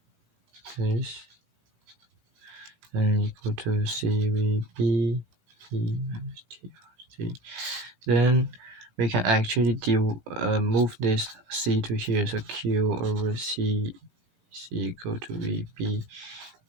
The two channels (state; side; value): late; left; 18 ms